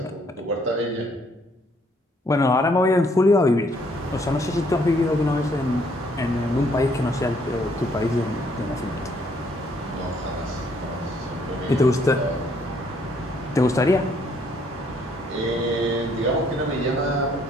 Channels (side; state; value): both; normal; correlation 0.67